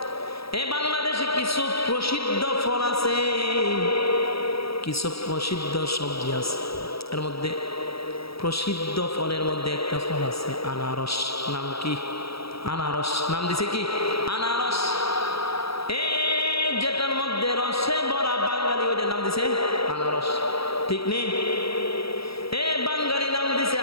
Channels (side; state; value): right; late; 0.76 ms